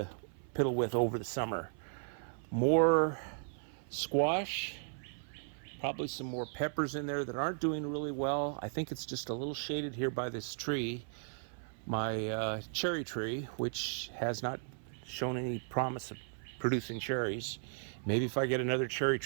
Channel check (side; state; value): left; silent; 54 dB below the other